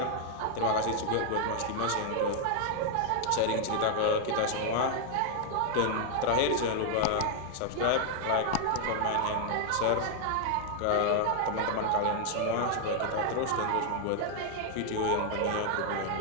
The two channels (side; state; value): both; different; correlation 0.00